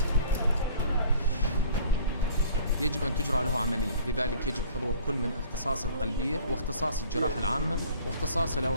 يجب أن تجرى له عملية، لذلك يجب حضور كل من اختصاص القلبية واختصاص الجراحة العامة واختصاص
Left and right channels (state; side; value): inverted; both; correlation -0.51